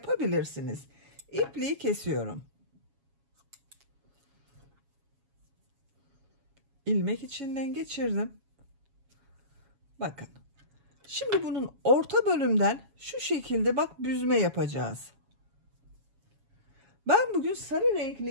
İpliği kesiyorum. İlmek içinden geçirdim. Bakın. Şimdi bunun orta bölümden şu şekilde bak büzme yapacağız. Ben bugün sarı renkli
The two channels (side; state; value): left; late; 7.2 ms